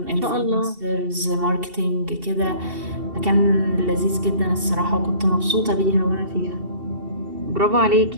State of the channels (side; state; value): left; late; 2.7 ms